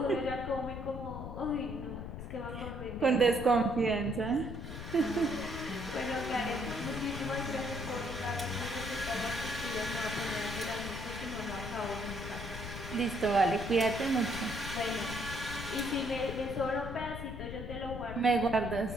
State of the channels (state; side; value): noise; left; rumble, 8 dB below the sound